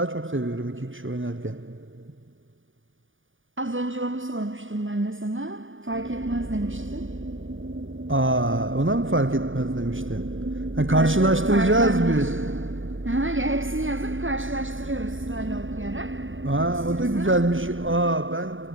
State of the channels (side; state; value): left; late; 0.57 ms